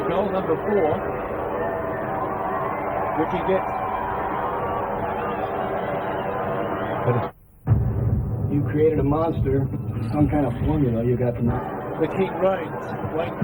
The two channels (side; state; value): both; identical; correlation 1.00